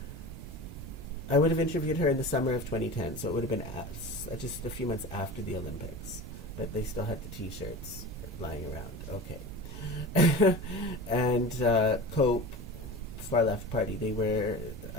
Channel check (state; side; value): noise; right; rumble, 13 dB below the sound